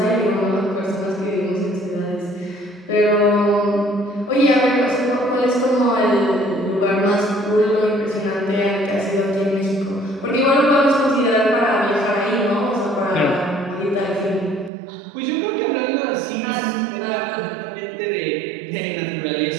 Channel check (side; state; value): left; drops out; at 14.7 s